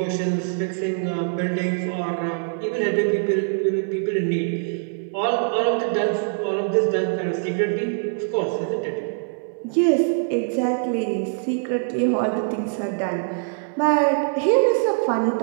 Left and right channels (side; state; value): left; silent; 63 dB below the other